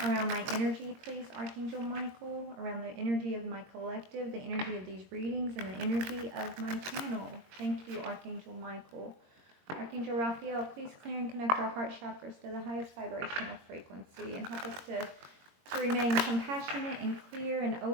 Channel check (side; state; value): left; late; 22 ms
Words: my energy, please, Archangel Michael, around the energy of my collective, the energy of these readings, and the energy of my channel. Thank you, Archangel Michael. Archangel Raphael, please clear and connect our heart chakras to the highest vibrational frequency and help us to remain compassionate and clear and